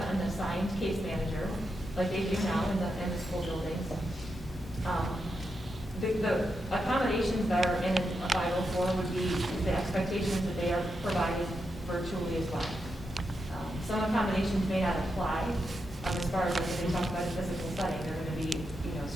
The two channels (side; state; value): both; normal; correlation 0.85